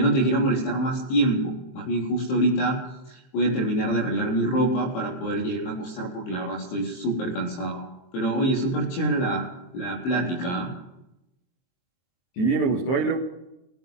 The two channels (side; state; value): right; late; 23 ms